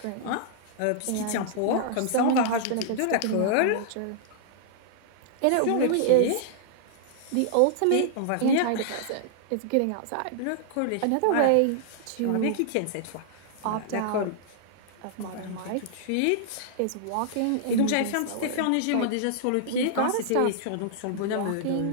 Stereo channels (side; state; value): both; different; correlation -0.01